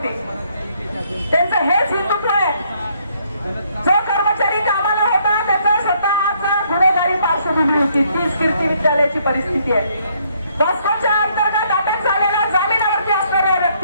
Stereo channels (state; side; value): inverted; both; correlation -0.69